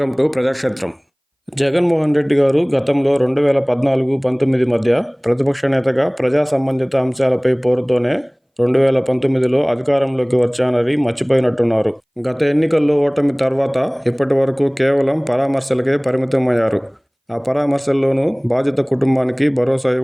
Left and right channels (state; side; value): identical; both; correlation 1.00